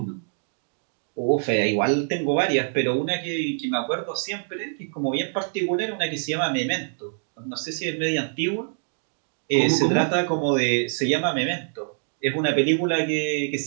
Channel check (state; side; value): silent; left; 62 dB below the other